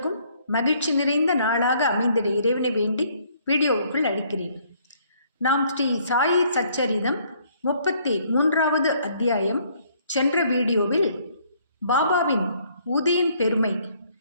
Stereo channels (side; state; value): both; inverted; correlation -0.64